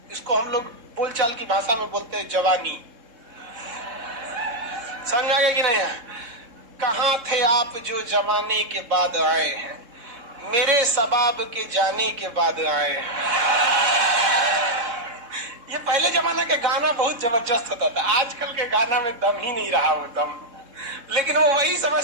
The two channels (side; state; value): left; late; 3.7 ms